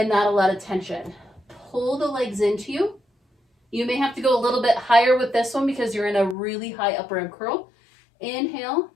not a lot of tension. Pull the legs into you. You may have to go a little bit higher with this one because you're in a really high upper ab curl. Inhale,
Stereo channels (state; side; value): drops out; right; at 6.4 s